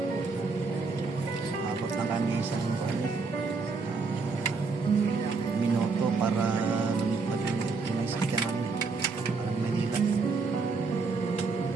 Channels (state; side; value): quieter; left; 4.4 dB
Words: Abot na kami sa minuto para lumipad yung sakyan namin. Parang Manila.